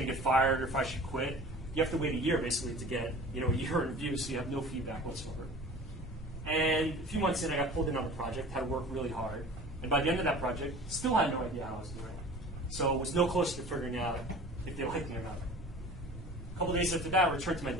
to get fired or if I should quit. You have to wait a year basically to get a year in review, so you have no feedback whatsoever. And a few months in, I got pulled in on the project, had to work really hard. And by the end of that project, still had no idea how I was doing. So was no closer to figuring out if they liked me or not. A couple days after that, I returned to my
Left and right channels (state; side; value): normal; both; correlation 0.42